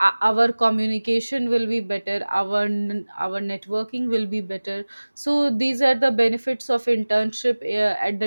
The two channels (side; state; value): both; inverted; correlation -1.00